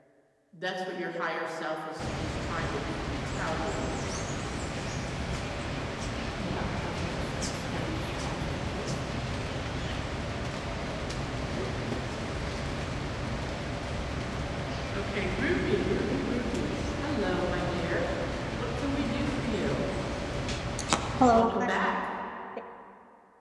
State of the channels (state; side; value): identical; both; correlation 1.00